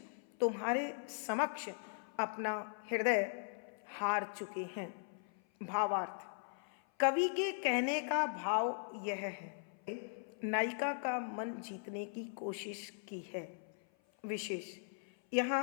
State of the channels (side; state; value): right; silent; 52 dB below the other